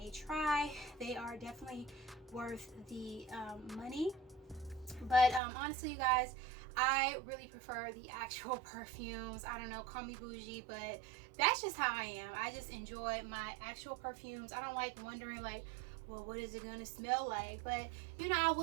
try. They are definitely worth the money. But honestly, you guys, I really prefer the actual perfumes. I don't know, call me bougie, but that's just how I am. I just enjoy my actual perfumes. I don't like wondering like, well, what is it gonna smell like? But you know, I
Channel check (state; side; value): drops out; left; at 5.4 s